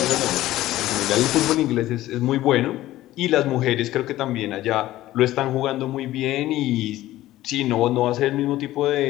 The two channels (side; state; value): right; quieter; 15.4 dB